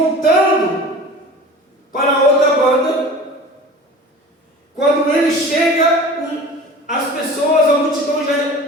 para a outra banda, quando ele chega, as pessoas, a multidão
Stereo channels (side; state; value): both; normal; correlation 0.39